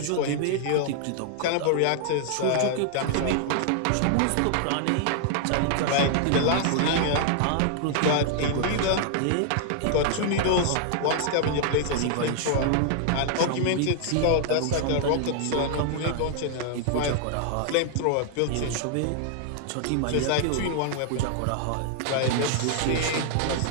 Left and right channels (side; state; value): both; different; correlation 0.00